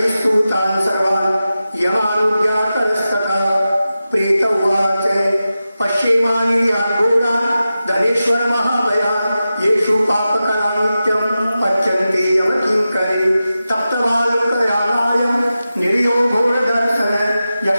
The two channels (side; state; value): both; inverted; correlation -0.93